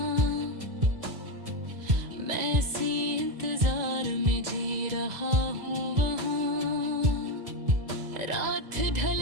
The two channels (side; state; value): left; late; 1.9 ms